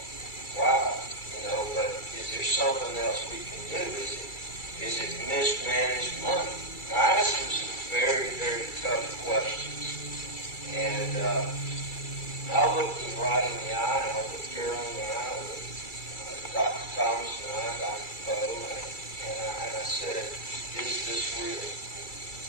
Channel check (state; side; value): late; right; 2.3 ms